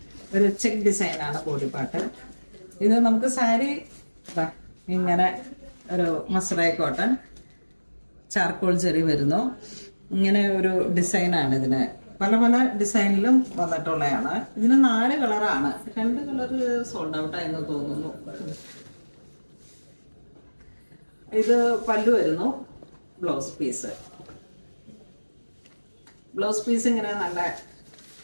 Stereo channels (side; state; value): both; inverted; correlation -1.00